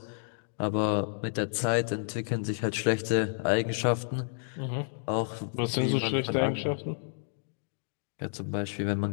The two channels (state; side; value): silent; right; digital silence